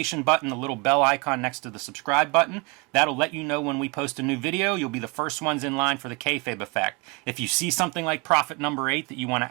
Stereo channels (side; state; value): left; quieter; 28.9 dB